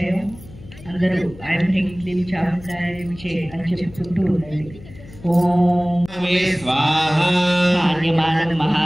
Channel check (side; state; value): left; noise; hum, 19 dB below the sound